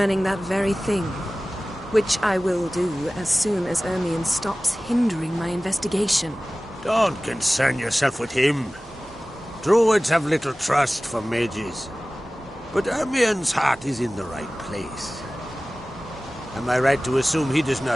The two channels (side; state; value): both; normal; correlation 0.97